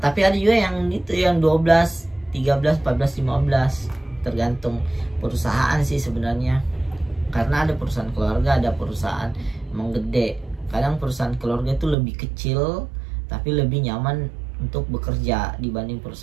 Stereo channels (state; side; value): drops out; left; at 12.0 s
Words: Tapi ada juga yang gitu, yang 12, 13, 14, 15, tergantung perusahaan sih sebenarnya. Karena ada perusahaan keluarga, ada perusahaan emang gede. Kadang perusahaan keluarga itu lebih kecil tapi lebih nyaman untuk bekerja dibanding